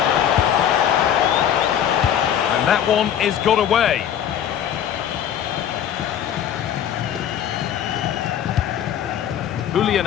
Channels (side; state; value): right; quieter; 9.7 dB